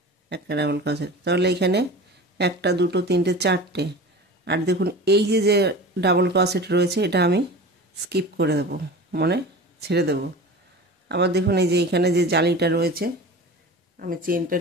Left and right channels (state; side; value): normal; both; correlation 0.35